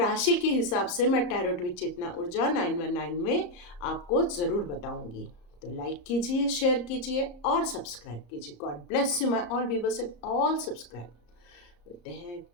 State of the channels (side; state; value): right; late; 34 ms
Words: के हिसाब से मैं टैरोट विद चेतना ऊर्जा 919 में आपको ज़रूर बताऊंगी। तो लाइक कीजिए, शेयर कीजिए और सब्सक्राइब कीजिए। God bless you my all viewers and all subscribe. मिलते हैं